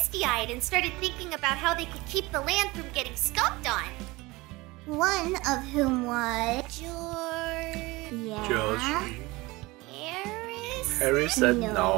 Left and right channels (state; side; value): quieter; left; 21.9 dB